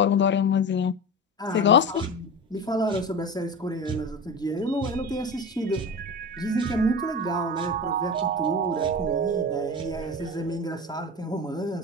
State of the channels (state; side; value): normal; both; correlation 0.28